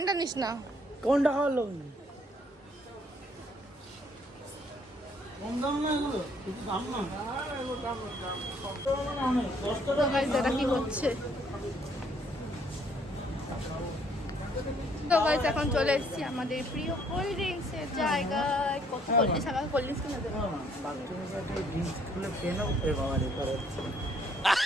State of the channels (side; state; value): both; normal; correlation 0.65